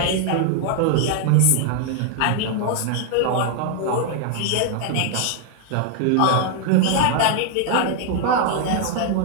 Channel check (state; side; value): different; both; correlation 0.00